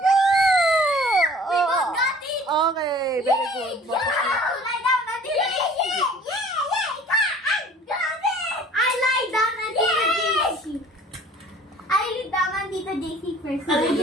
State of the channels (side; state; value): both; normal; correlation 0.50